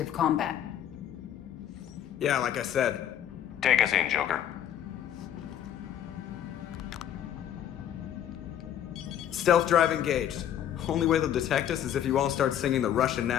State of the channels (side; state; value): right; quieter; 10.3 dB